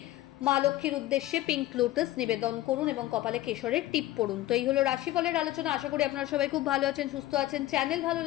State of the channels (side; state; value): right; quieter; 15.8 dB